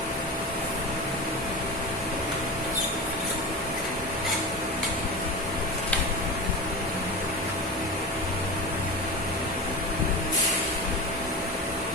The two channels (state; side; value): normal; both; correlation 0.26